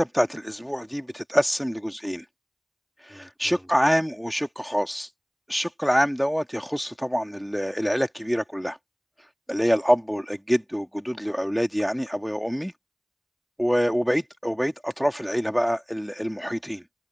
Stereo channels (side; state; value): both; identical; correlation 1.00